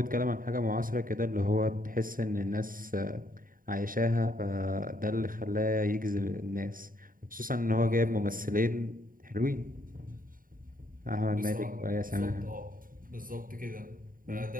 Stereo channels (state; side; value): late; left; 0.41 ms